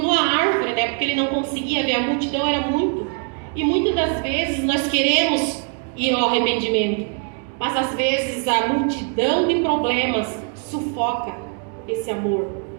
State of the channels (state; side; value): quieter; left; 39.1 dB